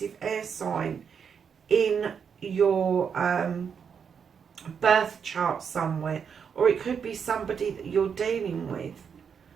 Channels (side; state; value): left; quieter; 6.9 dB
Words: air sign in your birth chart somewhere, or it could be somebody that you're dealing with.